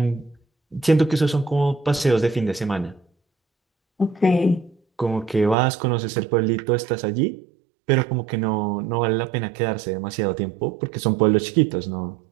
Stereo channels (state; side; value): drops out; left; at 5.6 s